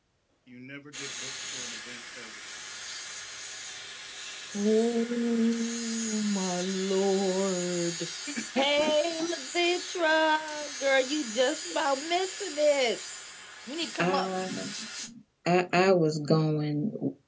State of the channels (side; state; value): both; identical; correlation 1.00